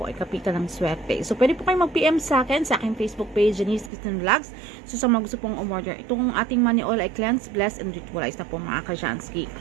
ay kapitan ng swerte. So, pwede po kayo mag-PM sa akin, sa aking Facebook page, Janice Kristen Vlogs. So, sa mga gusto pong umorder, itong ating money oil ay cleanse, bless, and ritualize na po mga ka-Jansky.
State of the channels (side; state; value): left; drops out; at 3.9 s